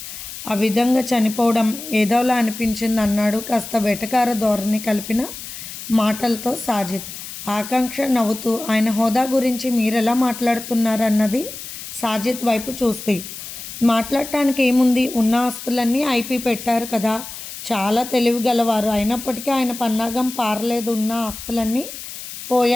ఆ విధంగా చనిపోవడం ఏదోలా అనిపించింది అన్నాడు కాస్త వెటకార ధోరణి కలిపిన మాటలతో సాజిద్. ఆకాంక్ష నవ్వుతూ ఆయన హోదా గురించి మీరెలా మాట్లాడుతున్నారన్నది సాజిద్ వైపు చూస్తే. మాట్లాడటానికి ఏముంది, ఉన్న ఆస్తులన్నీ ఐపీ పెట్టారు కదా, చాలా తెలివిగలవారు, అయినప్పటికీ ఆయన పన్నాగం పారలేదు, ఉన్న ఆస్తులన్నీ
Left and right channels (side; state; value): left; noise; hiss, 11 dB below the sound